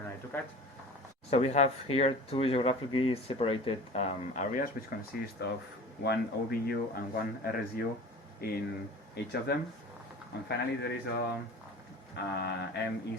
i2CAD. So we have here two geographically separated areas which consist of one OBU and one RSU in each of them. And finally there is a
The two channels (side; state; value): both; normal; correlation 0.40